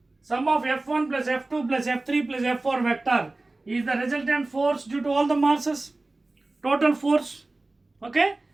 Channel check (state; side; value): quieter; left; 3.0 dB